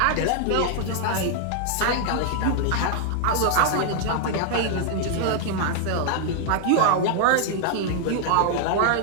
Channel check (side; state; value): both; different; correlation -0.01